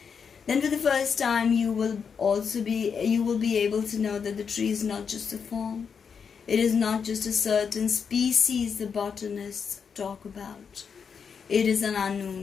Then for the first time you will be able to know that the tree is not just a form. It is not just a certain species the botanists talk about. It is an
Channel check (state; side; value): quieter; right; 6.4 dB